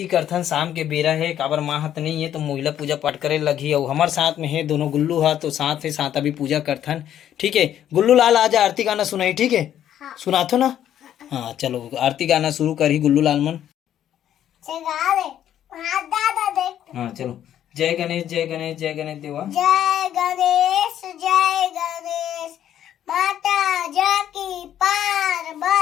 करथन शाम के बेरा है काबर माँ हाथ नहीं है तो महिला पूजा पाठ करे लगी और हमारे साथ में है दोनों गुल्लू हा तो साथ है साथ अभी पूजा करथन। ठीक है गुल्लू लाल आज आरती गाना सुनाई। ठीक है हाँ। सुनाथो ना। हाँ चलो आरती गाना शुरू करी गुल्लू लाल मन। हाँ चलो जय गणेश जय गणेश जय गणेश देवा। जय गणेश माता जाकी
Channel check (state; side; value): quieter; right; 10.8 dB